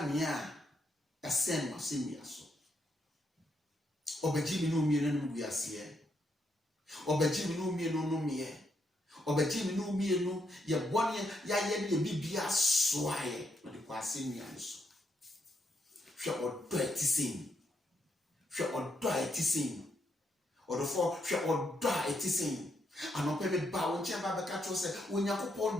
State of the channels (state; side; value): normal; both; correlation 0.78